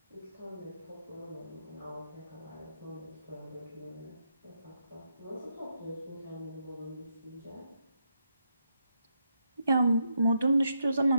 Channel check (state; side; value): inverted; both; correlation -0.80